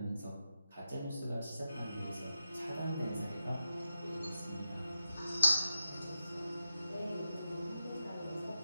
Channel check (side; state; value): both; inverted; correlation -0.88